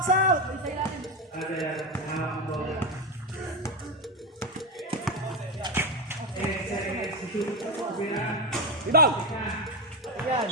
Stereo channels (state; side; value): normal; both; correlation 0.11